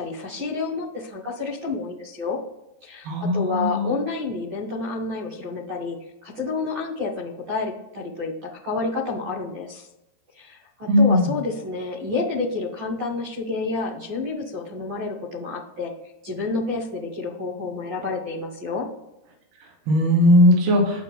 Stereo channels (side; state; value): left; late; 13 ms